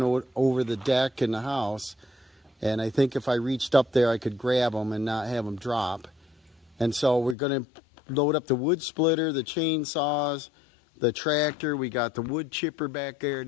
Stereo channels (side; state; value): right; drops out; at 7.4 s